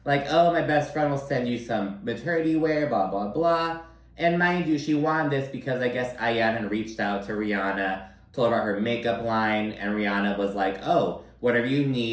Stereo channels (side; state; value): both; identical; correlation 1.00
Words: Oh, my best friend will send you some maternity wear, blah, blah, blah. And mind you, she wanted this because I guess Ayan had reached out to Rihanna, told her about her makeup line, and Rihanna was like, oh, whatever you